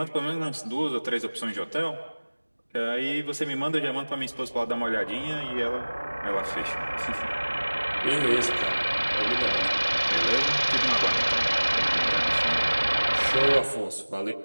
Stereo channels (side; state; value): both; inverted; correlation -1.00